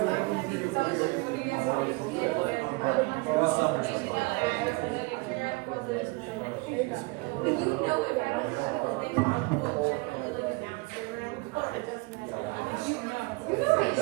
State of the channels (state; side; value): quieter; left; 25.8 dB